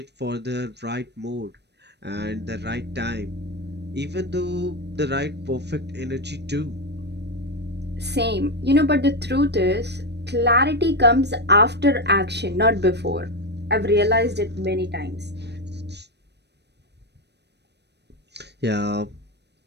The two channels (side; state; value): left; late; 0.49 ms